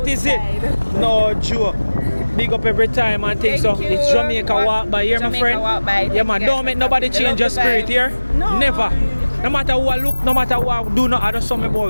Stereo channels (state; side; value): inverted; both; correlation -1.00